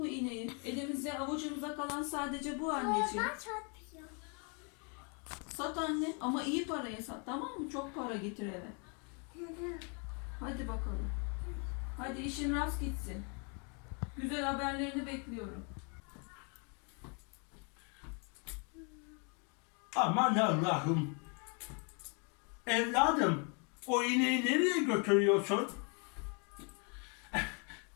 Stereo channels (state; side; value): quieter; right; 36.6 dB